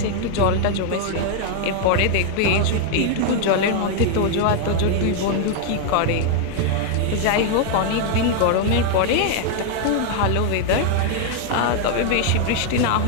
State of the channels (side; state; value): both; different; correlation 0.00